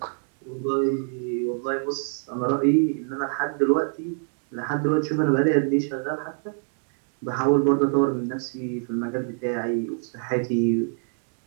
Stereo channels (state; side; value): silent; left; 55 dB below the other